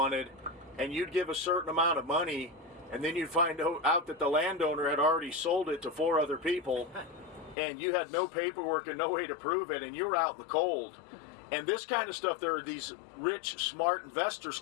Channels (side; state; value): right; drops out; at 7.6 s